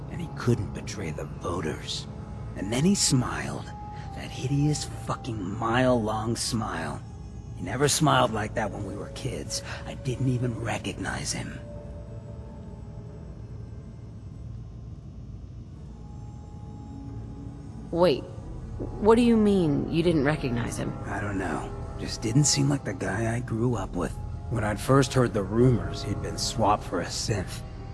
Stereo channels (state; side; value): identical; both; correlation 1.00